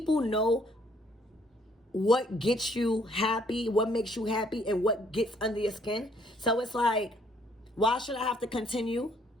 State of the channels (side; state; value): both; normal; correlation 0.65